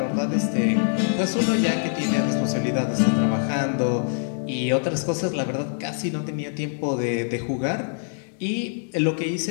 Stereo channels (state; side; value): silent; right; digital silence